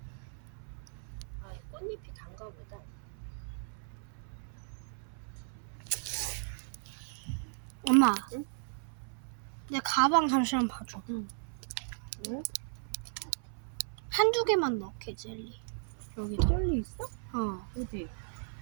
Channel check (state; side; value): silent; left; 54 dB below the other